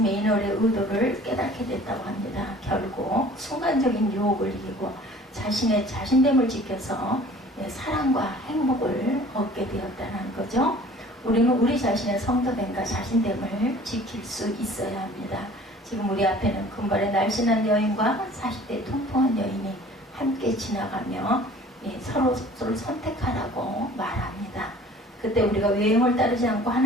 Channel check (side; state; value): both; normal; correlation 0.49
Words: 의도를 깨닫게 됐다고 합니다. 결국 순간적인 유혹을 이기고 자신의 자신됨을 지켜서 사랑과 행복을 얻게 되었다는 거죠. 우리는 우리 자신의 성도됨과 자신됨을 지킬 수 있어야 합니다. 지금 우리 앞에는 금발의 날씬한 여인과 40대 통통한 여인이 함께 지나가며 서로를 선택하라고 말합니다. 그때 우리가 외형을 따르지 않고